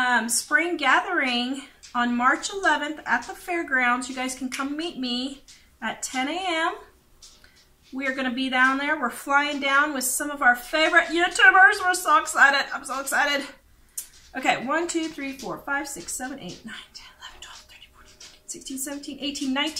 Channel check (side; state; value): both; identical; correlation 1.00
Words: spring gathering on March 11th at the fairgrounds. You guys can come meet me at 10 a.m. We are going to be down there. We're flying down with some of our favorite YouTubers. We're so excited. I'm so excited. Okay, 1, 2, 3, 4, 5, 6, 7, 8, 9, 10, 11, 12, 13, 14, 15, 16, 17, 18,